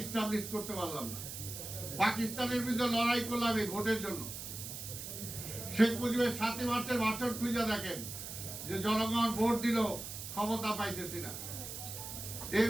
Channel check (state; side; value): noise; right; hiss, 8 dB below the sound